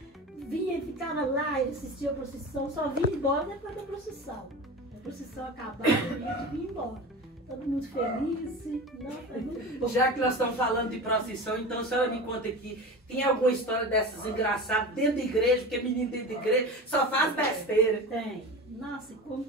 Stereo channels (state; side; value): normal; both; correlation 0.30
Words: vinha e ficava lá, assistia a procissão, só vinha embora depois da procissão. A procissão acabava e a gente vinha embora. Todo mundo feliz, não, foi muito bom. Já que nós estamos falando de procissão, então a senhora me conta aqui, tem alguma história dessas engraçadas dentro da igreja, porque menino dentro da igreja só faz besteira. Tem. Nossa, como